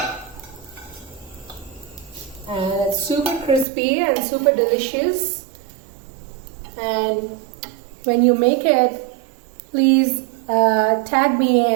And it's super crispy and super delicious. And when you make it, please tag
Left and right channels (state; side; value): drops out; left; at 3.7 s